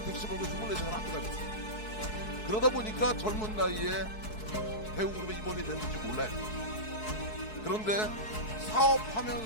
택시 몰고 24시간 학교 다녔어요. 그러다 보니까 젊은 나이에 배우그룹에 임원이 됐는지 몰라요. 그런데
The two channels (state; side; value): late; right; 4.6 ms